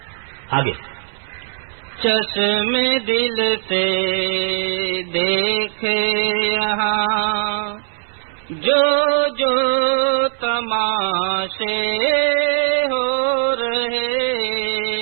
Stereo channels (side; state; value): left; silent; 62 dB below the other